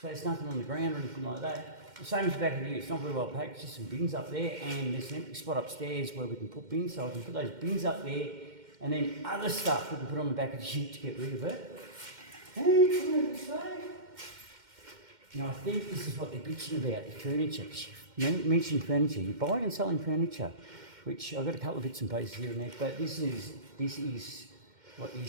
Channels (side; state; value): left; late; 2.1 ms